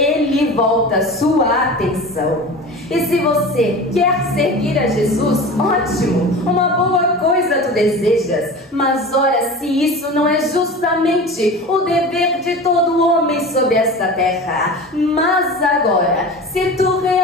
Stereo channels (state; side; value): normal; both; correlation 0.33